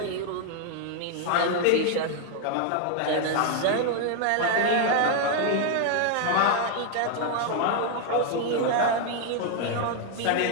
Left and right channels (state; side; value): different; both; correlation 0.00